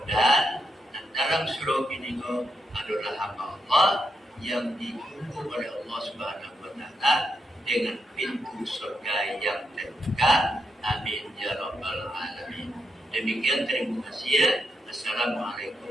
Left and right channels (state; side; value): normal; both; correlation 0.82